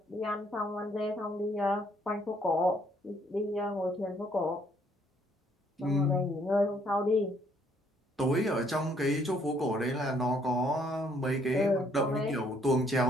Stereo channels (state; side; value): normal; both; correlation 0.67